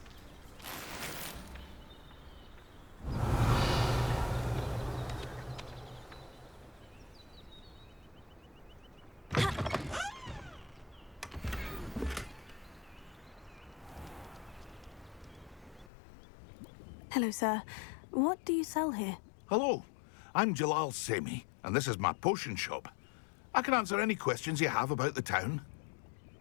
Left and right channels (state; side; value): drops out; right; at 15.9 s